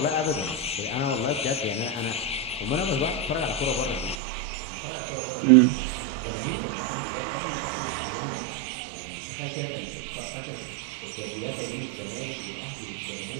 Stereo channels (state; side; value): drops out; left; at 4.2 s